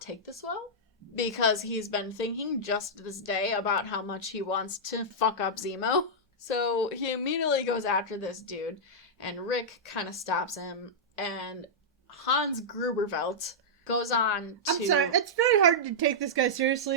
take this well, because he's been thinking just this day about how much he wants to fuck up Zemo. So he immediately goes after this dude, and Rick kind of stops him, and Hans Grubervelt goes on to... I'm sorry, it's very hard to take this guy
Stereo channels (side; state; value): both; normal; correlation -0.10